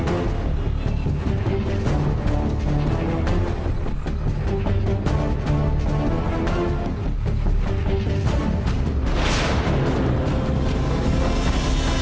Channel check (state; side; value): identical; both; correlation 1.00